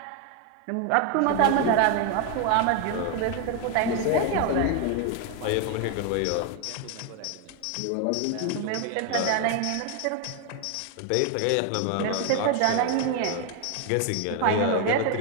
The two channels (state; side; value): different; both; correlation 0.01